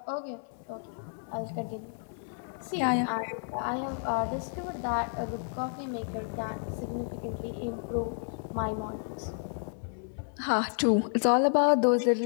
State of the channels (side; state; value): right; silent; 57 dB below the other